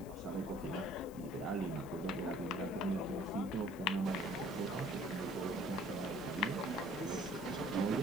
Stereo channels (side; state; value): left; noise; hiss, 20 dB below the sound